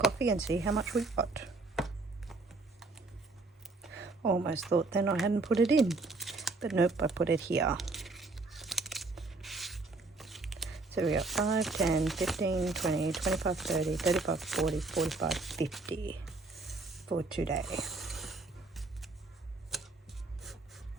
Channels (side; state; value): left; quieter; 3.5 dB